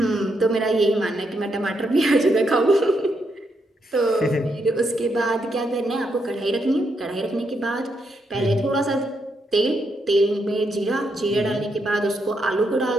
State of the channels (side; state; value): both; normal; correlation 0.79